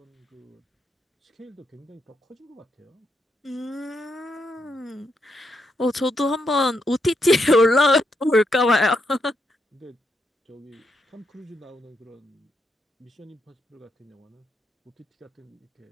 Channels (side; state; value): both; normal; correlation 0.80